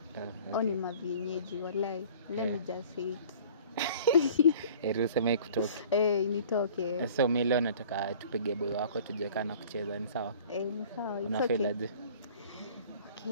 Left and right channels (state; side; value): inverted; both; correlation -0.48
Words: Oni mavienyeji walai. Let me just say it. Eruseme kutoke. Nitoke. So mimi leo nataka tupige boy wako tujeka na kucheza, ni sawa? Ni sawa. Unafeel aje?